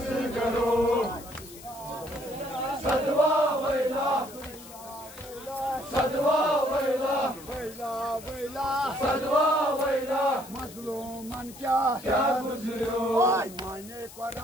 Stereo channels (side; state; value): left; noise; hiss, 18 dB below the sound